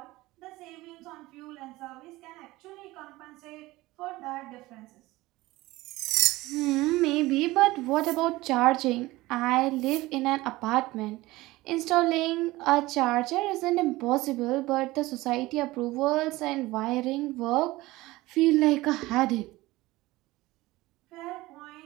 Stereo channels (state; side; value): quieter; left; 19.2 dB